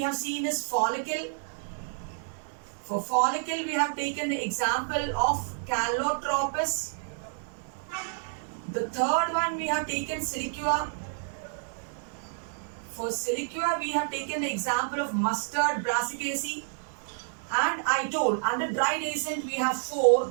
have seen is follicle. For follicle, we have taken the example of Calotropis. The third one we have taken siliqua. For siliqua, we have taken the example of mustard, Brassicaceae. And I told, under dry dehiscent, we have 4.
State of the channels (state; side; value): silent; left; 58 dB below the other